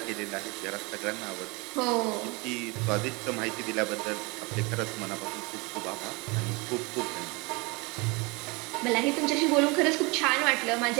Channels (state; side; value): quieter; left; 27.3 dB